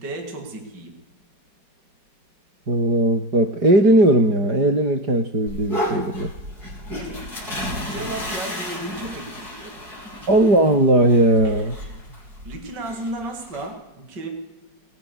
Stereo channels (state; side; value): late; left; 4.7 ms